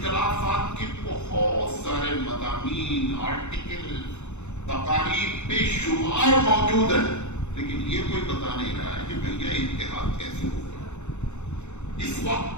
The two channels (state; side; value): late; right; 0.83 ms